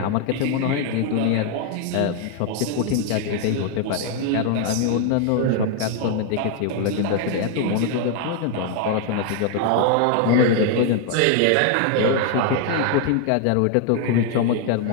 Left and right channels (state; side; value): different; both; correlation 0.00